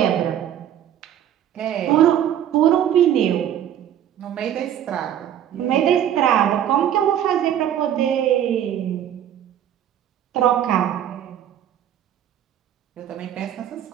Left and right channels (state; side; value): quieter; left; 10.5 dB